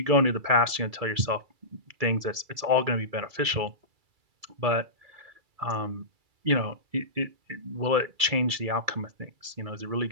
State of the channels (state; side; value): late; left; 2.3 ms